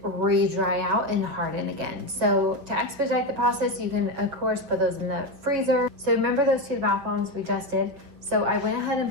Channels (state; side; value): late; left; 7.0 ms